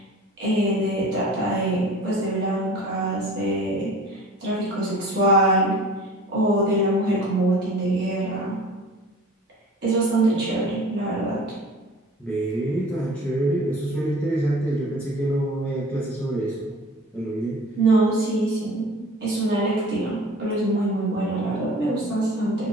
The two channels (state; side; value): normal; both; correlation 0.43